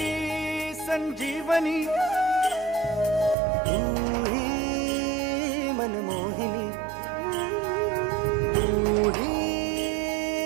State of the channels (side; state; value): left; drops out; at 3.4 s